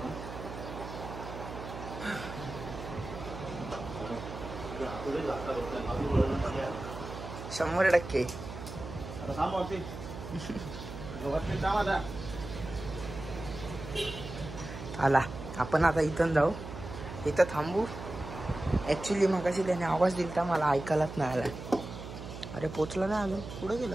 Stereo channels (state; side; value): noise; right; hum, 10 dB below the sound